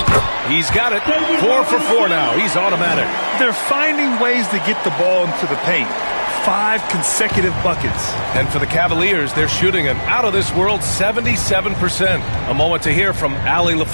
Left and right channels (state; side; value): inverted; both; correlation -1.00